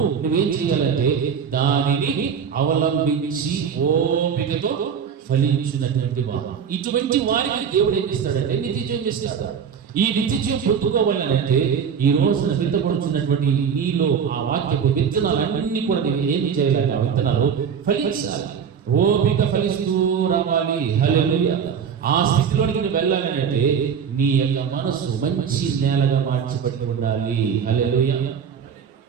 నువ్వేం చేయాలంటే దానిని అవలంబించి ఓపికతో ఫలించినటువంటి వారు. ఇటువంటి వారికి దేవుడు ఏం ఇస్తాడంటే నిత్య జీవం ఇస్తాడు. ఈ నిత్య జీవం పొందుకోవాలంటే ఈ రోజున విత్తబడుతున్నటువంటి నీలో ఆ వాక్యపు విత్తనాలన్నీ కూడా నువ్వు ఏమి చేయాలి, ఆ విత్తనాలు ఫలించాలి. ఓపిక ఫలిస్తూ రావాలి. హల్లెలూయా. ఆ స్థితిలోనికి నువ్వు వెళ్ళాలని అంటే నీ యొక్క మనసు మంచి నేలగా మార్చబడి ఉండాలి. హల్లెలూయా.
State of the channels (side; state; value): left; quieter; 7.2 dB